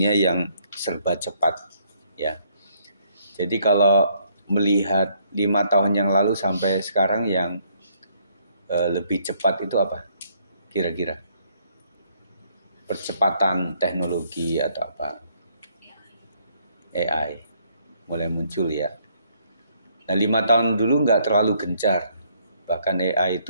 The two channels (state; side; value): inverted; both; correlation -0.68